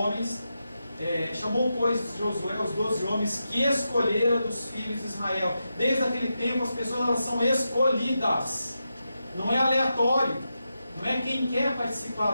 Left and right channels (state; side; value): inverted; both; correlation -0.88